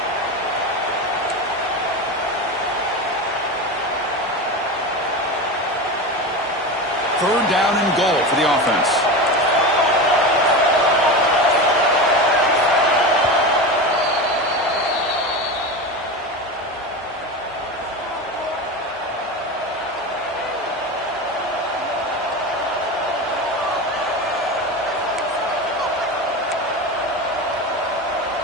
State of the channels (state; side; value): normal; both; correlation 0.24